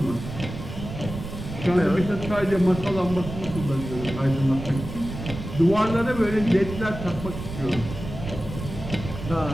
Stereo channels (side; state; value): right; noise; rumble, 9 dB below the sound